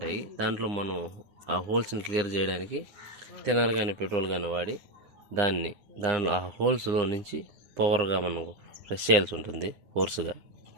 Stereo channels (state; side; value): late; left; 9.8 ms